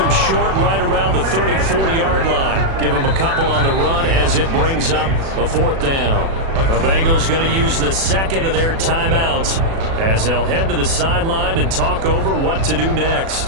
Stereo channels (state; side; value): late; left; 36 ms